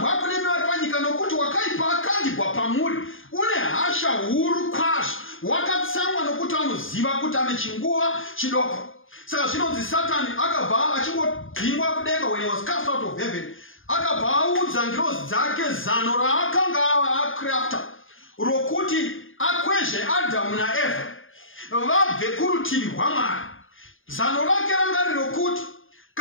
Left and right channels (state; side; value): late; right; 0.59 ms